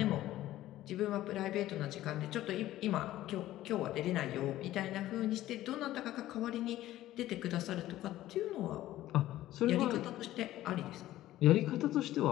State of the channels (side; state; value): right; quieter; 14.6 dB